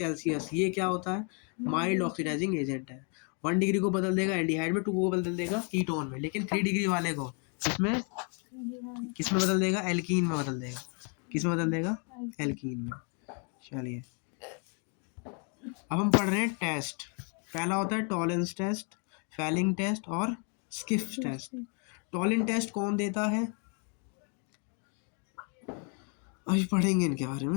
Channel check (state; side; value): quieter; right; 37.1 dB